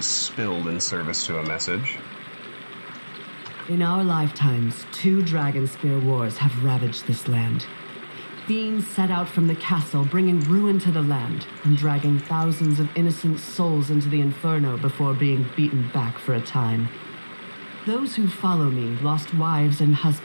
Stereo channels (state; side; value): inverted; both; correlation -1.00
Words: spilled in service to a message. In our lifetimes, 2 Dragonspear wars have ravaged this land. Fiends set out from the castle, bringing ruin to the land, and dragging thousands of innocent souls into the inferno before being beaten back for a time. Those who follow me lost wives and